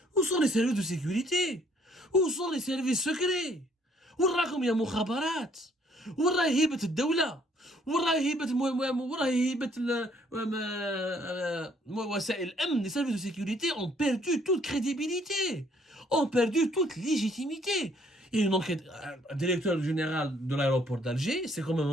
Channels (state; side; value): normal; both; correlation 0.64